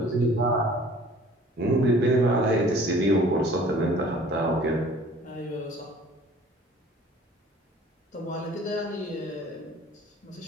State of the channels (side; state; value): both; normal; correlation 0.50